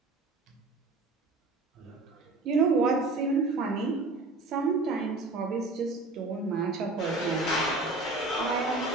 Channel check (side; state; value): left; quieter; 3.2 dB